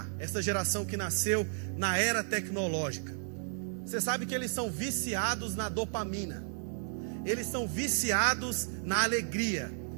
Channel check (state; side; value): silent; left; digital silence